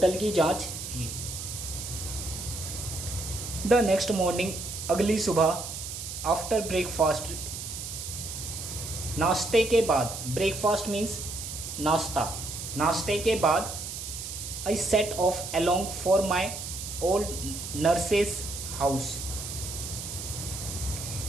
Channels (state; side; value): noise; right; hiss, 7 dB below the sound